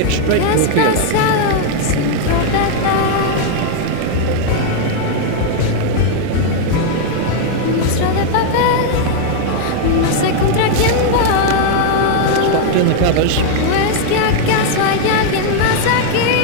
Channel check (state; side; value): different; both; correlation 0.00